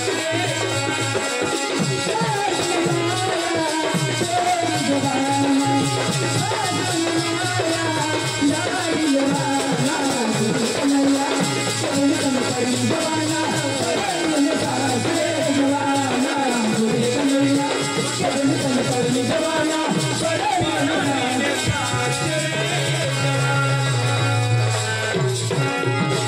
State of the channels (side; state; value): both; identical; correlation 1.00